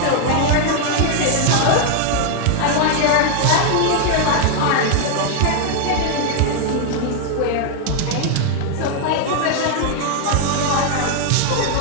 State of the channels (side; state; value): both; different; correlation 0.00